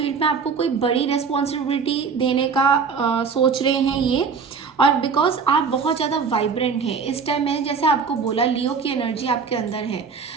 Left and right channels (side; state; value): left; quieter; 5.6 dB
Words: में आपको कोई बड़ी रिस्पॉन्सिबिलिटी देने का सोच रहे हैं ये। और बिकॉज आप बहुत ज़्यादा वाइब्रेंट हैं इस टाइम, मैंने जैसे आपको बोला लियो की एनर्जी आपके अंदर है,